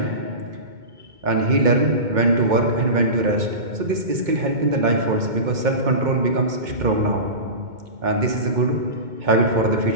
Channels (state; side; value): late; left; 2.2 ms